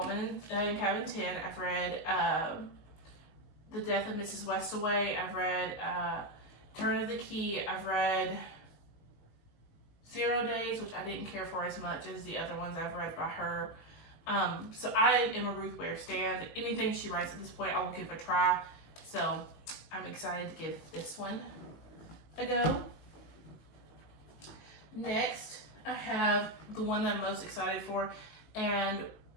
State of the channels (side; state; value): right; late; 19 ms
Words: in Cabin 10. I've read The Death of Mrs. Westaway. I've read Turn of the Key. I've read 0 Days, which I didn't care for as much as the other ones I've read by her. So I am a Ruth Ware stan. Anything she writes at this point, I will give a try. So I'm excited to give this one a go. Next, I have the one that I'm most excited for, and